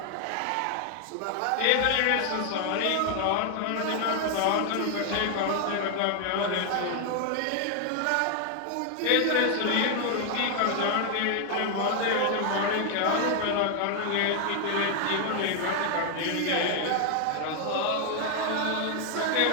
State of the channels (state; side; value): different; both; correlation 0.00